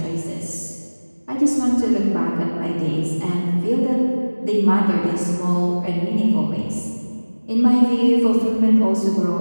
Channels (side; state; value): both; inverted; correlation -1.00